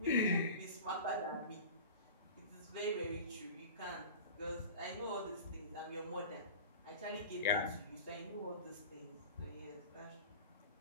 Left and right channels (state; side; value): inverted; both; correlation -0.36